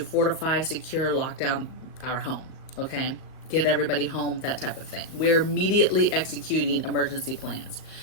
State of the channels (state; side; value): late; right; 37 ms